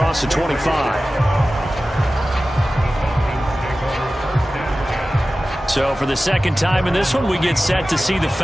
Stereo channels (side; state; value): both; normal; correlation 0.96